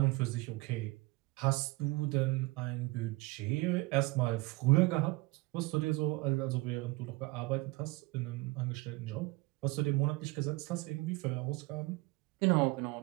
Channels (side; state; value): left; quieter; 22.3 dB